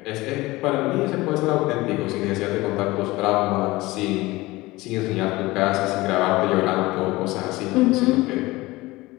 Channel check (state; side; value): quieter; right; 20.2 dB